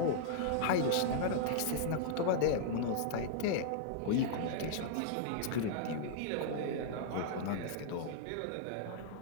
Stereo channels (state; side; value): different; both; correlation -0.01